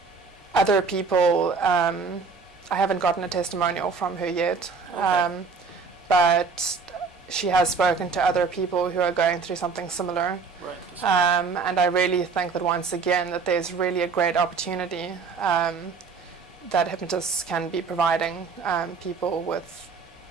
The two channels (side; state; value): left; quieter; 5.0 dB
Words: other people, I haven't gotten a testimonial from her yet, but she has spoken to other people who are going through something similar. And I really think that once again that there's really a great opportunity that hypnotists can be providing people with